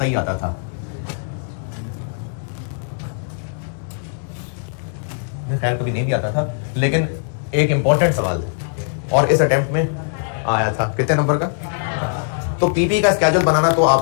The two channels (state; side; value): silent; right; 58 dB below the other